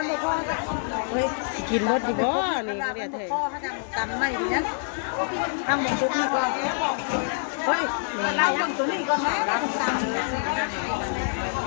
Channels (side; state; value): right; silent; digital silence